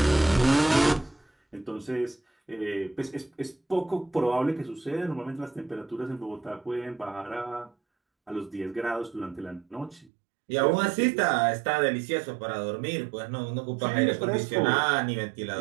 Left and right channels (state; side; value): drops out; left; at 10.1 s